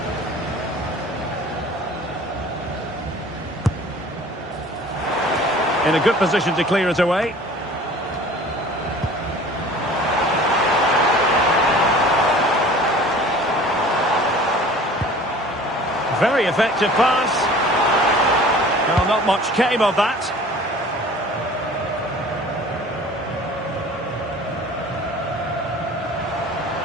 In a good position to clear it away. Very effective pass. Well, not much came of that.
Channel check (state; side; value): normal; both; correlation 0.46